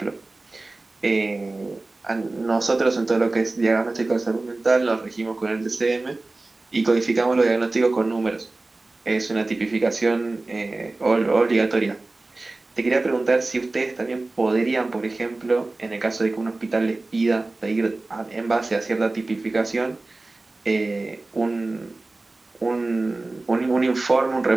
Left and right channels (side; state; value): left; quieter; 3.2 dB